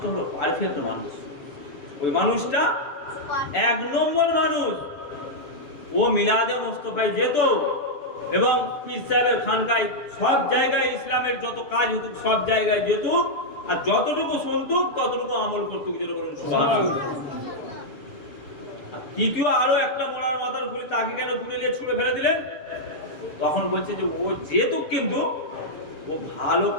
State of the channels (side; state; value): right; late; 7.1 ms